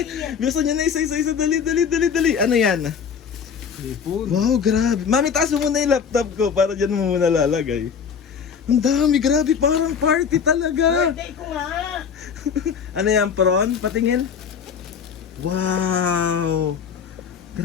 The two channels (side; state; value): right; quieter; 6.8 dB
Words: Buksan niyo na isa-isa. Dali. Ano yan? Sipon. Wow, grabe. Mami, taas mo muna yung laptop ko para dyan mo muna lalagay. Ang dami, grabe. Parang party talaga. Birthday ko nga. Ano yan, prawn? Patingin. Wow.